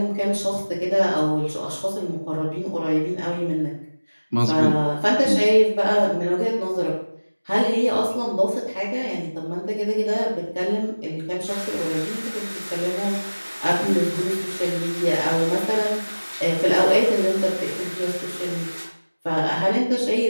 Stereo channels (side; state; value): both; inverted; correlation -1.00